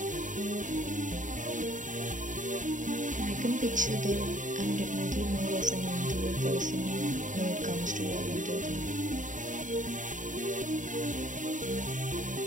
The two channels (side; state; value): left; late; 0.37 ms